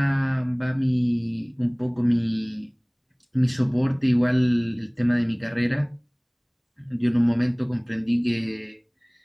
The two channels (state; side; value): identical; both; correlation 1.00